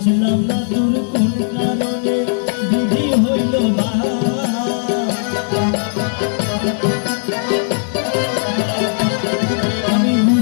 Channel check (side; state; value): right; silent; digital silence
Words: না তোর কোন কারণে দিদি হইল বা, আমি